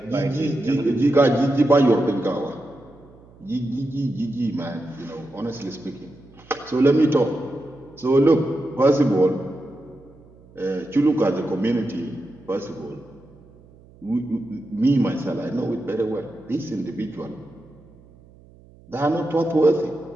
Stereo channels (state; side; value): noise; right; hum, 25 dB below the sound